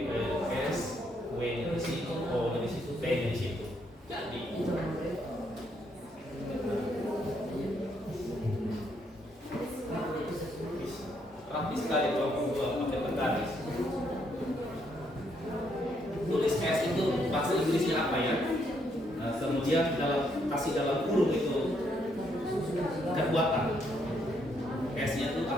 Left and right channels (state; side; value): normal; both; correlation 0.73